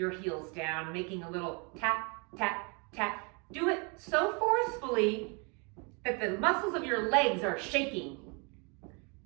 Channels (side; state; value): left; quieter; 32.8 dB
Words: heels down, making a little tap, tap, tap. Do it so forcefully that the muscles of your legs are shaking.